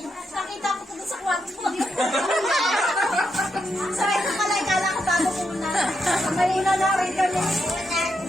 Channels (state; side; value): normal; both; correlation 0.83